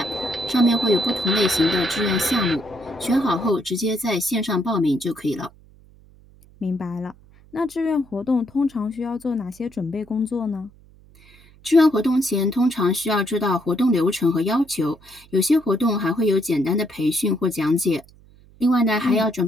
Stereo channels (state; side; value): noise; right; hum, 26 dB below the sound